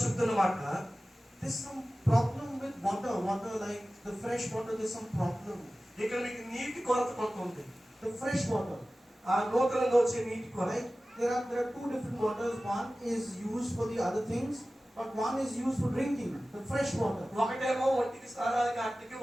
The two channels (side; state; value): both; normal; correlation 0.96